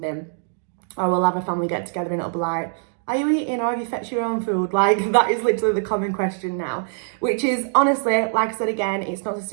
or we'll have a family get together and it'll be like, are you eating or have you fetched your own food? Like, that is literally the common question now, which is, honestly, like I said again, it's not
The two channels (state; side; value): silent; left; digital silence